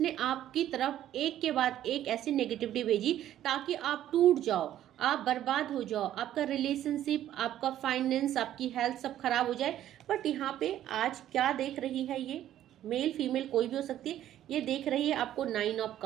आपकी तरफ एक के बाद एक ऐसी नेगेटिविटी भेजी ताकि आप टूट जाओ, आप बर्बाद हो जाओ, आपका रिलेशनशिप, आपका फाइनेंस, आपकी हेल्थ सब खराब हो जाए। बट यहाँ पे आज क्या देख रही है, ये मेल फीमेल कोई भी हो सकती है, ये देख रही है आपको 9 ऑफ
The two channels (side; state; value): left; quieter; 12.0 dB